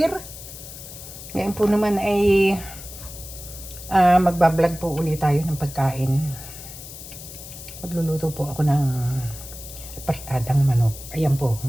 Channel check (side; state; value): left; noise; hiss, 13 dB below the sound